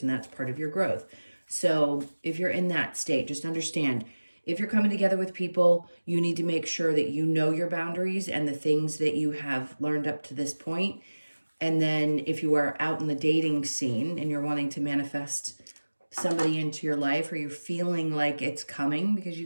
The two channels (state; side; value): inverted; both; correlation -1.00